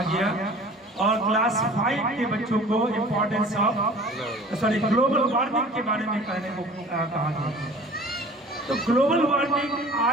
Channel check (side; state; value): both; normal; correlation 0.45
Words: गया और क्लास 5 के बच्चों को इम्पोर्टेंस ऑफ ग्लोबल वार्मिंग के बारे में कहने को कहा गया। तो ग्लोबल वार्मिंग